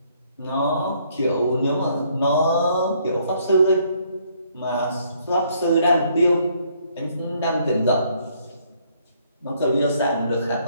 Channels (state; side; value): inverted; both; correlation -0.67